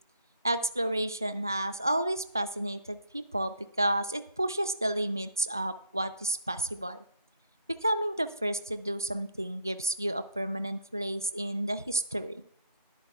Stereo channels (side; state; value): both; inverted; correlation -0.64